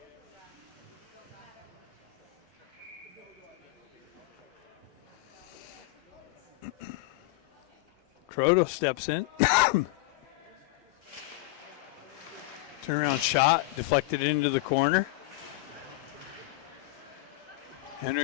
Croto steps in. Turnaround shot, deflected into the corner.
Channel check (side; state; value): right; quieter; 20.5 dB